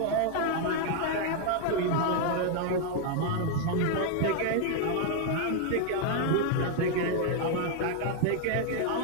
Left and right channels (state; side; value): different; both; correlation 0.00